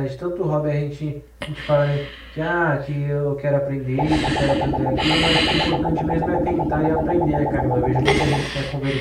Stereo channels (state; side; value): identical; both; correlation 1.00